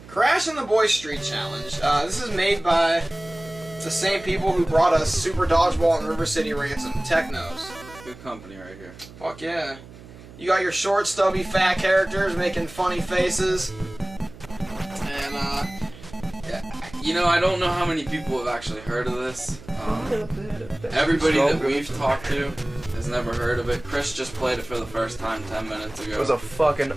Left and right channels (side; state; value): right; noise; hum, 19 dB below the sound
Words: Crash and the Boys Street Challenge. This is made by the same people who brought us Super Dodgeball and River City Ransom. Technos. Good company right here. Fuck yeah. You got your short, stubby, fat characters making funny faces. And, you know, I don't know how many people have actually heard of this. Everybody that we've talked to has never heard of it. Chris just played it for the first time 10 minutes ago. It was a fucking